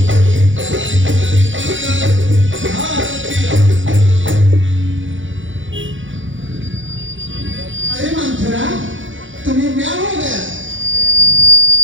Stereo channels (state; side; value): late; left; 0.56 ms